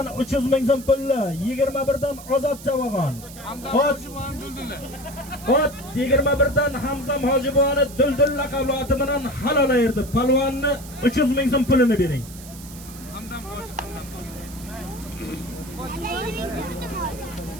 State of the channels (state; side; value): noise; right; hiss, 17 dB below the sound